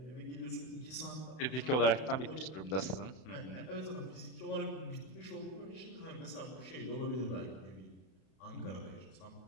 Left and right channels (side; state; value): right; late; 32 ms